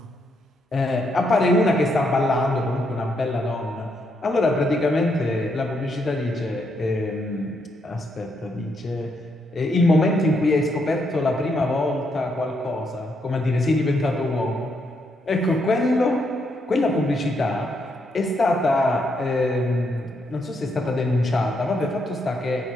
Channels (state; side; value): normal; both; correlation 0.77